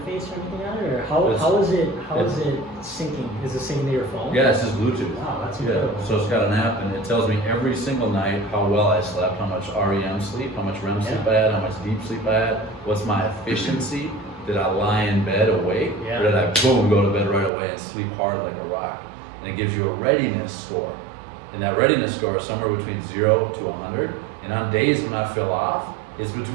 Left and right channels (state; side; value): drops out; left; at 17.5 s